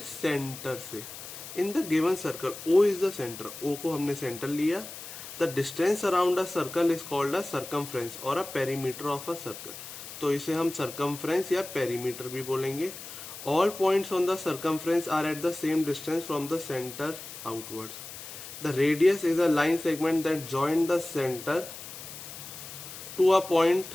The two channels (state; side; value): noise; left; hiss, 12 dB below the sound